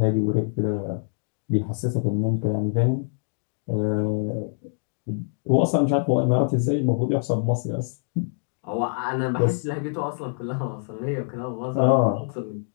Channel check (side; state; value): right; silent; digital silence